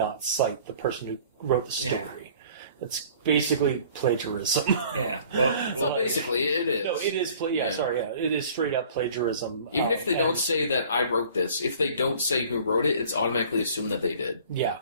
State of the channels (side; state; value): both; inverted; correlation -0.50